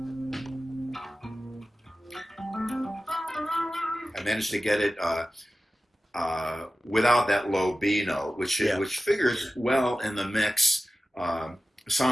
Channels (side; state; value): both; normal; correlation 0.95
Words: I managed to get it without that low B note, which figures well in the mix